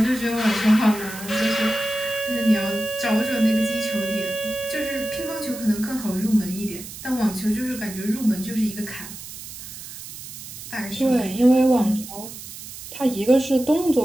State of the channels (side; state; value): right; noise; hiss, 12 dB below the sound